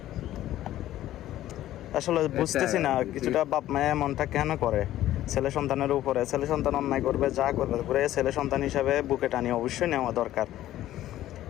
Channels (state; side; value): quieter; right; 13.7 dB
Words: আসলে বুঝতেছি না কিছুটা বাপ মায়ের মনটা কেন করে ছেলে সন্তানের উপরে। ছেলে সন্তান অন্যায় করবে, যা করবে করে ছেলে সন্তান হিসাবে বুকে টানি অবশ্যই নেওয়া দরকার।